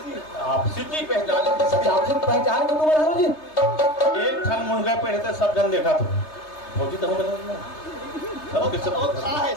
आपसी की पहचान आपसे पहचान के तुम्हारे हरो जी एक खन मुंगा पे रहते सब जन देखा तो होती तो बना ना सब किस और खा है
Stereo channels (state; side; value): late; right; 3.3 ms